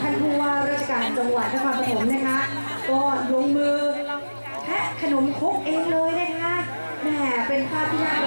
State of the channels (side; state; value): both; inverted; correlation -1.00